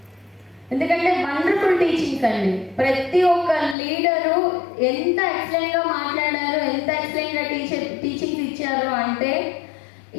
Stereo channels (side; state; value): right; drops out; at 3.8 s